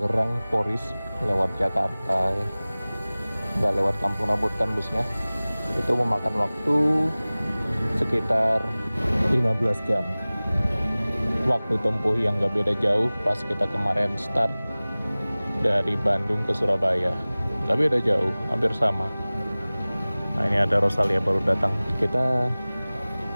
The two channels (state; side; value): inverted; both; correlation -0.99